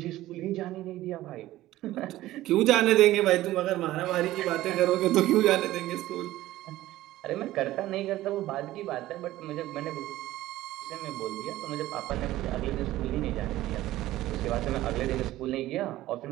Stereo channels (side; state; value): left; quieter; 15.7 dB